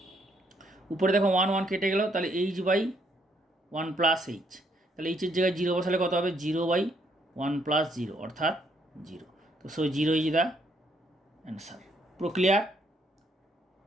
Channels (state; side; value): normal; both; correlation 0.71